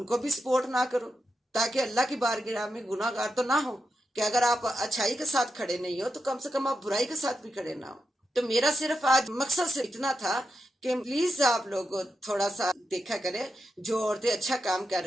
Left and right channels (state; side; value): normal; both; correlation 0.87